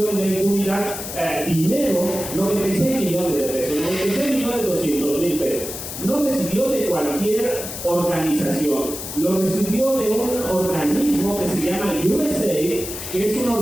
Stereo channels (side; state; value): left; noise; hiss, 8 dB below the sound